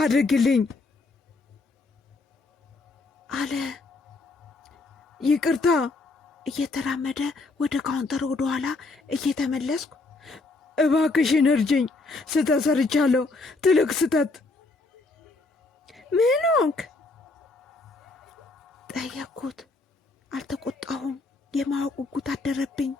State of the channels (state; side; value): quieter; right; 3.5 dB